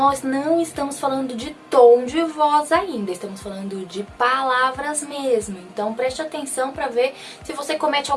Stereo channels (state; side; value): identical; both; correlation 1.00